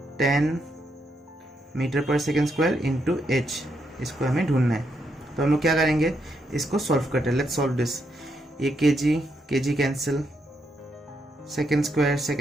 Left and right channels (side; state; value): both; normal; correlation 0.79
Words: 10 metre per second square into h. इसको हमें ढूंढना है. तो हम लोग क्या करेंगे? इसको सॉल्व करते हैं. Let's solve this. ये kg cancel, second